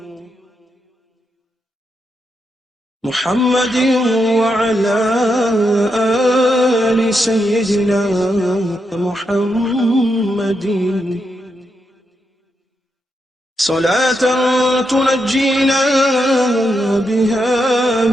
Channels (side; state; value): both; normal; correlation 0.83